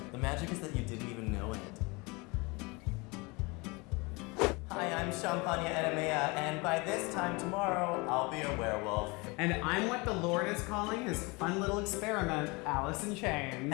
The magic is that you didn't even know it. Hi, I'm Champagna Enemea, and by this time tomorrow, I'll be a werewolf. And I'm what the Lord is calling his fun little experiment, Allysin Chaynes.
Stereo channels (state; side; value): quieter; right; 26.6 dB